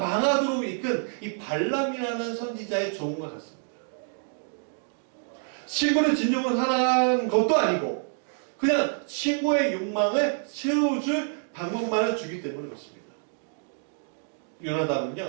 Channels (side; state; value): left; silent; 60 dB below the other